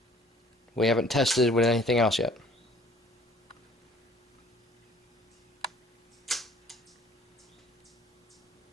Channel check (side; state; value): both; normal; correlation 0.54